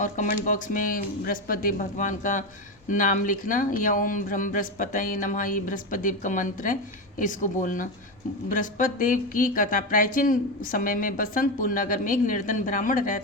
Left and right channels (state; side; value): normal; both; correlation 0.15